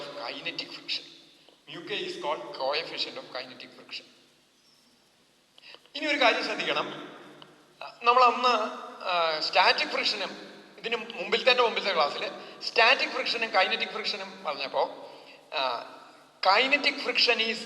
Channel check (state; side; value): identical; both; correlation 1.00